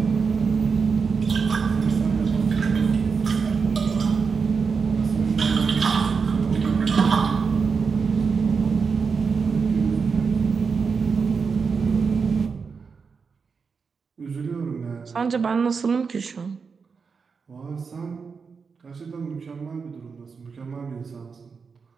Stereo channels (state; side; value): quieter; left; 5.4 dB